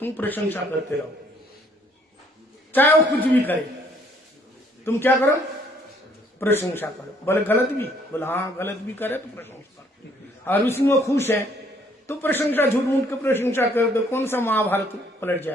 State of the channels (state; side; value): normal; both; correlation 0.64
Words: प्रशंसा करते रहो, चाहे वो कुछ भी करे, तुम क्या करो? प्रशंसा करो। बोले गलत भी? बोले हाँ गलत भी करे तो प्रशंसा करो। और उसमें वो खुश है तो प्रशंसा, झूठ मूठ के प्रशंसा कर दो, कौन सा महाभारत पलट